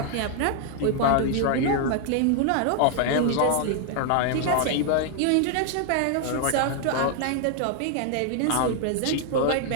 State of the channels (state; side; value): different; both; correlation 0.00